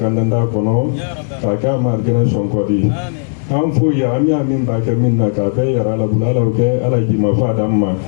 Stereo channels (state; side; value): silent; right; digital silence